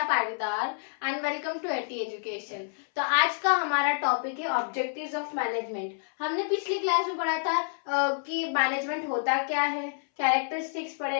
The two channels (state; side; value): silent; right; 59 dB below the other